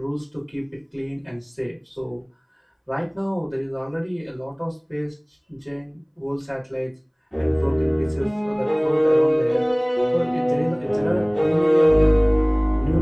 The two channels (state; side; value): identical; both; correlation 1.00